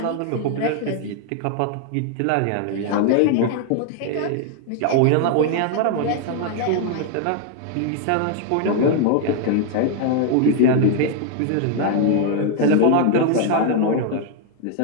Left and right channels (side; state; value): both; different; correlation 0.00